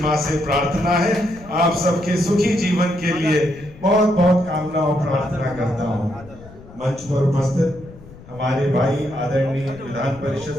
से प्रार्थना है। आप सबके सुखी जीवन के लिए बहुत कामना और प्रार्थना करता हूँ। मंच पर उपस्थित हमारे भाई आदरणीय विधान परिषद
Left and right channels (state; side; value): noise; left; rumble, 20 dB below the sound